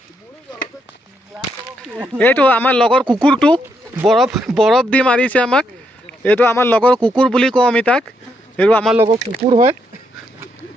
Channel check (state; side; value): normal; both; correlation 0.77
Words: এইটো আমাৰ লগৰ কুকুৰটো বৰফ দি মাৰিছে আমাক এইটো আমাৰ লগৰ কুকুৰ বুলি কওঁ আমি তাক এইটো আমাৰ লগৰ কুকুৰ হয়